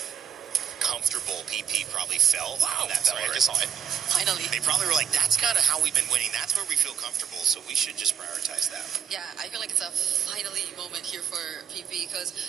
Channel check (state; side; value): quieter; left; 8.7 dB